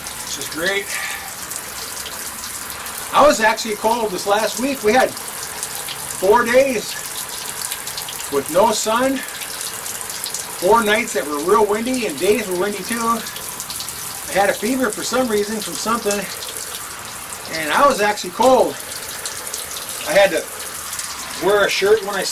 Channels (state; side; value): identical; both; correlation 1.00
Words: is great. I was actually cold this last week. We had 4 days with no sun, 4 nights that were real windy, and days were windy too. I had a fever for some reason from something, and I was actually cold. I had to wear a shirt when I